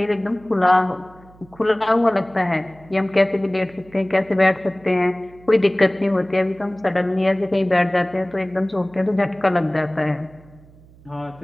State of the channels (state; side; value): noise; right; hum, 25 dB below the sound